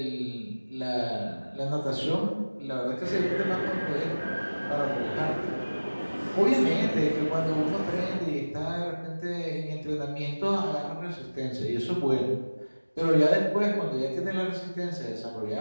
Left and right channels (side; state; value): both; inverted; correlation -1.00